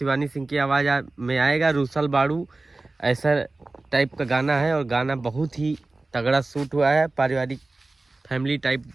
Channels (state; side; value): quieter; left; 3.2 dB